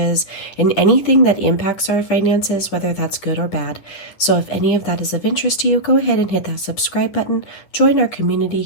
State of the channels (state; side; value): late; right; 10 ms